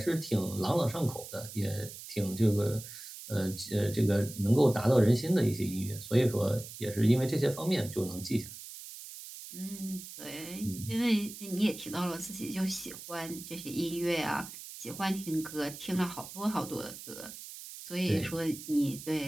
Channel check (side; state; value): right; noise; hiss, 13 dB below the sound